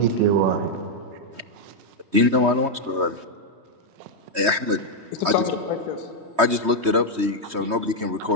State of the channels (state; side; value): late; left; 3.2 ms